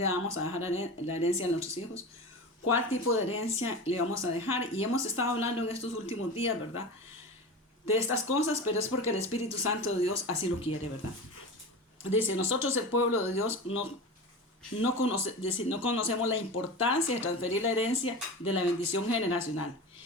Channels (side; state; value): both; normal; correlation 0.29